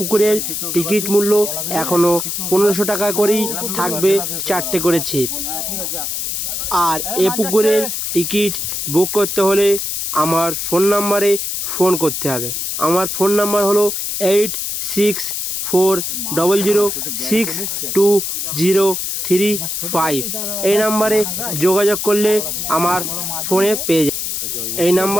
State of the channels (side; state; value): left; noise; hiss, 3 dB below the sound